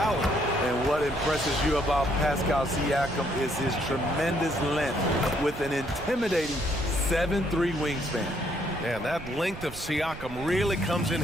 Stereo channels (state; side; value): noise; right; rumble, 14 dB below the sound